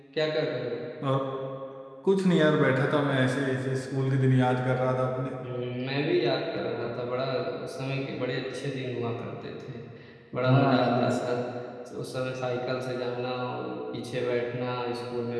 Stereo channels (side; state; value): both; identical; correlation 1.00